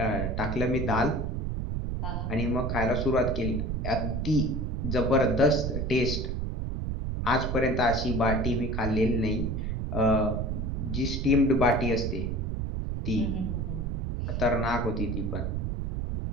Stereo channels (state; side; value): noise; right; rumble, 2 dB below the sound